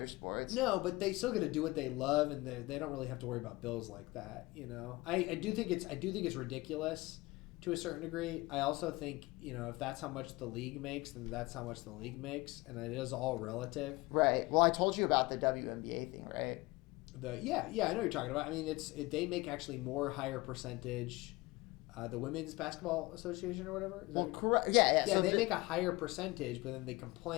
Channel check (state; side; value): quieter; right; 22.1 dB